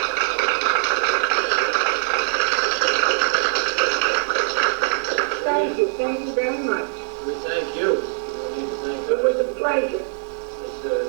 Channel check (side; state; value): left; silent; 64 dB below the other